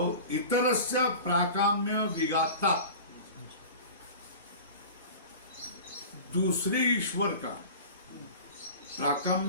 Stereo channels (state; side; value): inverted; both; correlation -0.37